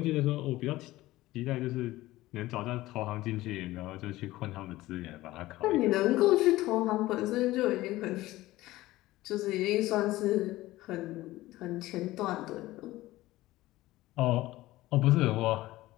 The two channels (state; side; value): quieter; right; 17.3 dB